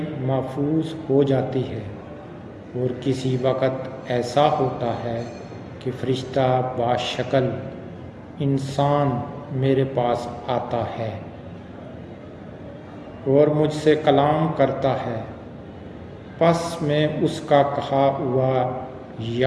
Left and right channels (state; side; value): identical; both; correlation 1.00